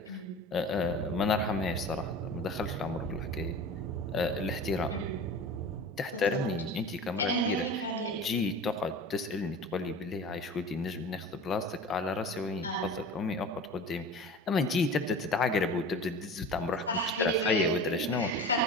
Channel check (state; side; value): normal; both; correlation 0.35